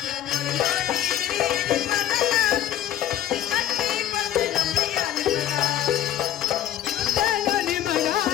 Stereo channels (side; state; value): right; quieter; 11.7 dB